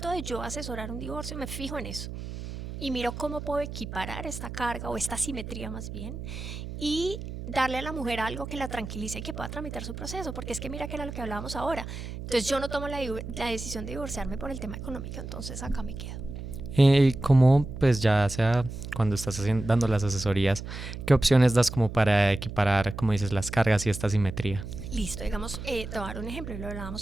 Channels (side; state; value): right; noise; hum, 9 dB below the sound